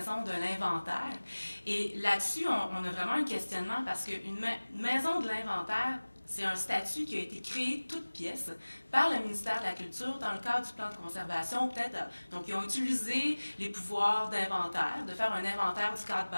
de l'inventaire. Et là-dessus, on a vraiment un questionnement parce qu'une maison de l'inventaire, c'est un statut qui a été créé toute pièce par le ministère de la Culture dans le cadre du plan de conservation. Donc, ils ont utilisé les pouvoirs d'inventaire, de faire un inventaire du cadre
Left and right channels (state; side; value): inverted; both; correlation -1.00